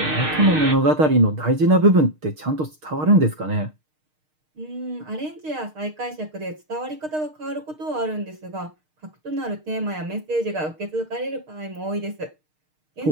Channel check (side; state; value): left; late; 6.5 ms